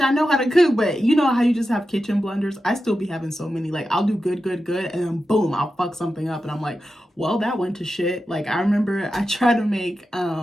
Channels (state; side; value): normal; both; correlation 0.91